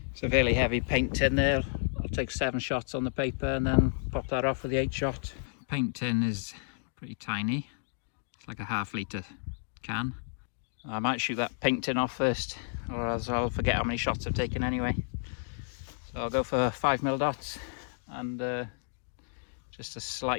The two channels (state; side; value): silent; right; digital silence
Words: It's a fairly heavy paint tin there. I'll take 7 shots on the paper and then pop that off with the 8 shot. Paint tin is pretty tiny. It's like a ½ litre can. I might shoot that paint tin off first, or else I'll forget how many shots I've taken anyway. So I'll go for 5 mil dots and just a